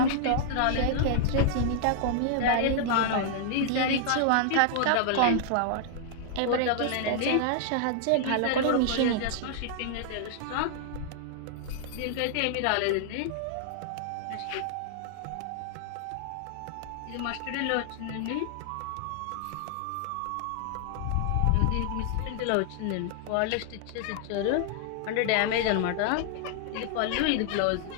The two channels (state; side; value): different; both; correlation -0.01